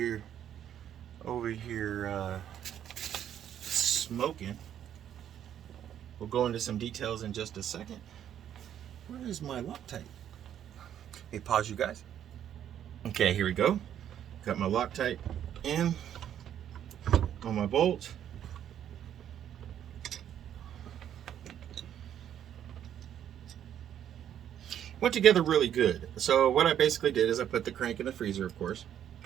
smoking. We'll go into some details in just a second. Where is my Loctite? Hey, pause you guys. Okay, here we go. Got my Loctite in on my bolt. Went together really good. So what I basically did is I put the crank in the freezer, of course,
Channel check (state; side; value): quieter; left; 10.1 dB